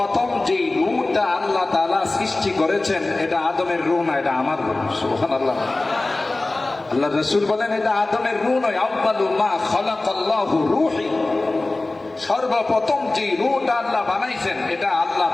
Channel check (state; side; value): quieter; right; 3.0 dB